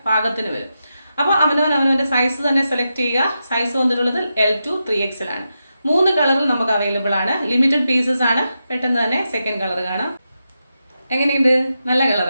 പാകത്തിന് വരും. അപ്പോൾ അവനവൻ്റെ സൈസ് തന്നെ സെലക്ട് ചെയ്യുക. സൈസ് വന്നിട്ടുള്ളത് L2 3XL ആണ്. 3 കളറിൽ നമുക്ക് അവൈലബിൾ ആണ്. ലിമിറ്റഡ് പീസസ് ആണ്. പെട്ടെന്ന് തന്നെ സെക്കൻഡ് കളർ കാണാം. എങ്ങനെയുണ്ട്? നല്ല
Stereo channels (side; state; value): both; inverted; correlation -0.88